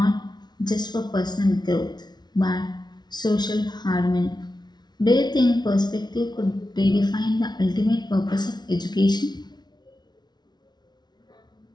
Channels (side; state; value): right; late; 0.20 ms